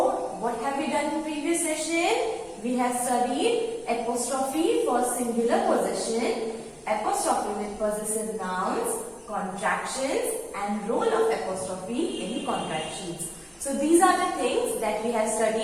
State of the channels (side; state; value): both; identical; correlation 1.00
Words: what have we done in previous session? We have studied apostrophe for singular possession, apostrophe with possessive nouns, contractions and role of apostrophe in contractions. So these are the things that we have